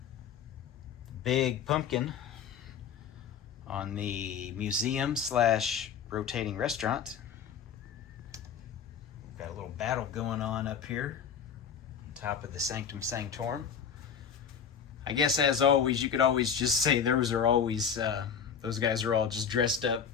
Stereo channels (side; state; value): right; quieter; 7.3 dB